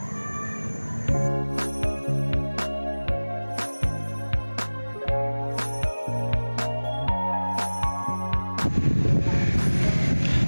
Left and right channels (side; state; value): both; inverted; correlation -1.00